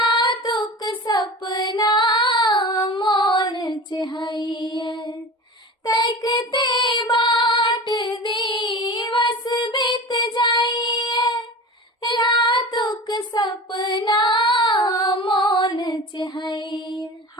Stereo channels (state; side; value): normal; both; correlation 0.33